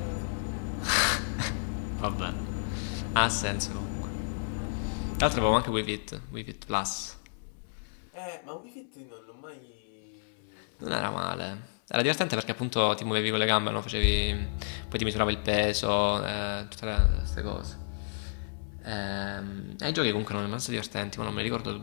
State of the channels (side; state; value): right; silent; 57 dB below the other